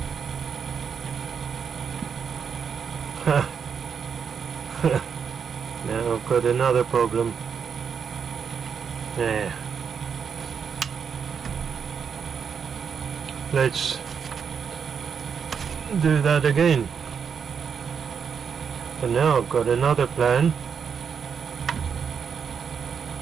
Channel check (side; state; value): left; quieter; 6.7 dB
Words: Now I've got another problem. Yeah. Let's do that again. And now I've got another plan.